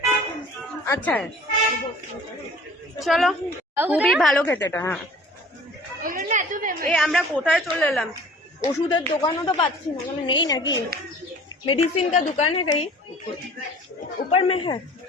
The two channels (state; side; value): normal; both; correlation 0.47